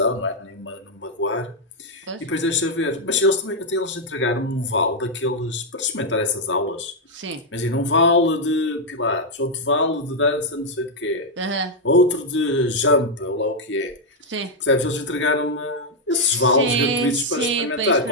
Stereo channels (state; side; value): normal; both; correlation -0.01